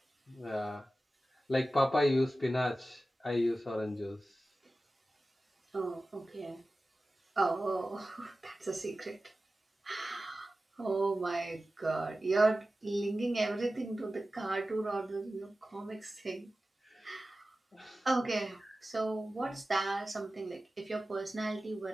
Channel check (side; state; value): both; normal; correlation 0.95